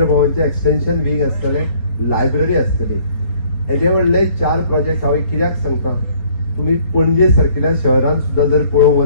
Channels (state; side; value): late; right; 4.3 ms